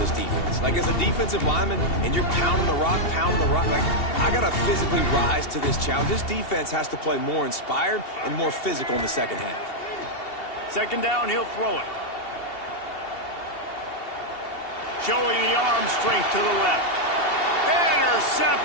defense. Like, as a defensive lineman, and you're pounding the rock, like, I got to physically rise to this challenge. This defense has to play more inspired and more physical in the second half. Second down, he'll throw it. Showing the arm strength to the left.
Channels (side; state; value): right; late; 2.7 ms